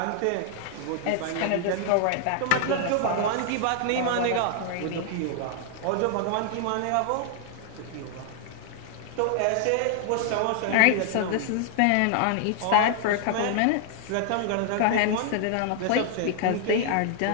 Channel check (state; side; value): different; both; correlation 0.00